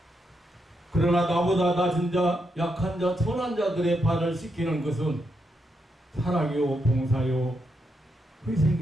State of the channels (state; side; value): normal; both; correlation 0.82